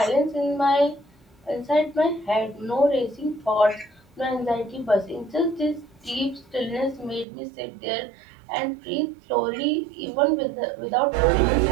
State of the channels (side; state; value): left; drops out; at 7.2 s